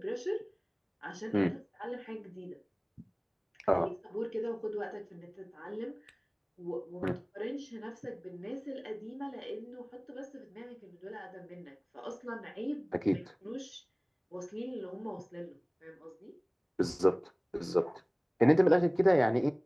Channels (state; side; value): identical; both; correlation 1.00